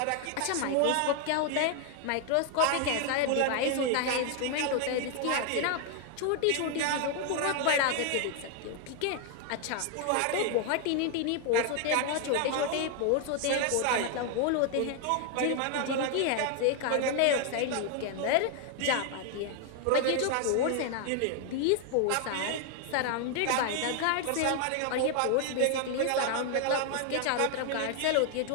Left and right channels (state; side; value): different; both; correlation 0.00